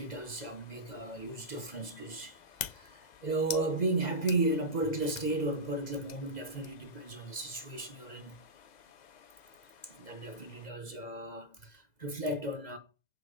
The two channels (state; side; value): late; right; 2.0 ms